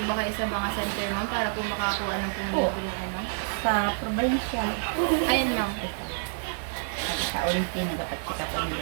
ba kayo sa mga center, ma'am, para po makakuha ng pumuli ng ano? Sa probinsya. Ayun, ma'am. Sa Olimpi, nagkakatika ko yung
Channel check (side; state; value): left; silent; digital silence